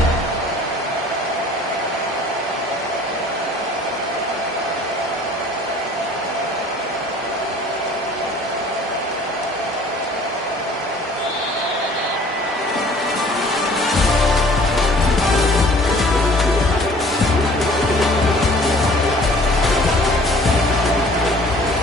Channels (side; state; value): both; normal; correlation 0.52